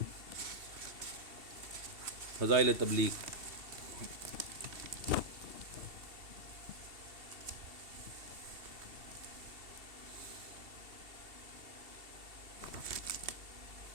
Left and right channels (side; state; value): left; late; 2.7 ms